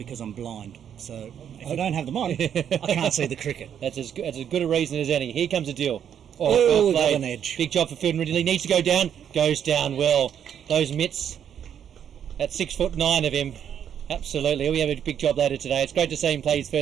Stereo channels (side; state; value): left; quieter; 8.9 dB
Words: I'm blind. So if I don't have them on, I can't see the cricket. That's as good a reason as any. Here comes a deal. Oh, got an edge. Big job for Fielden Ridley. Needs to go down. Goes down well. Those mitts. That's 6'9" of him. Absolutely. He'll have a big job later today. It's great to see him play his